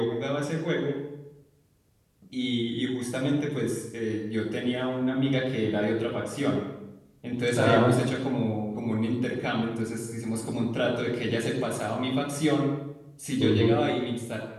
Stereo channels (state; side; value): identical; both; correlation 1.00